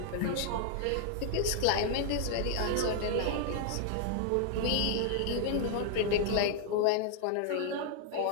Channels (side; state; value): both; different; correlation 0.00